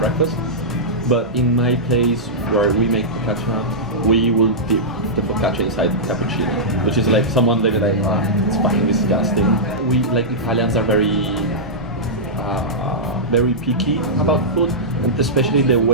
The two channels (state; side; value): normal; both; correlation -0.12